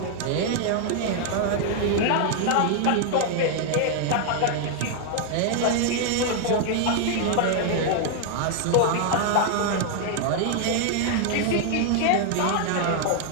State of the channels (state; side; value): different; both; correlation 0.00